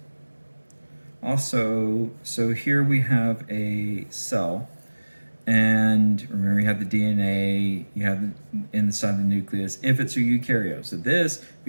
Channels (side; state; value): both; inverted; correlation -1.00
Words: Also, so here we have a cell. And remember, you have the DNA, you have inside the nucleus, if it's a eukaryote. So this,